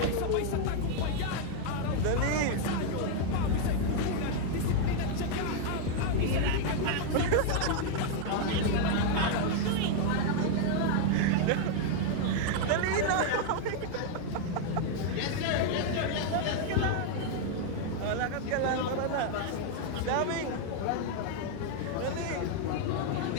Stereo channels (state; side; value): different; both; correlation 0.00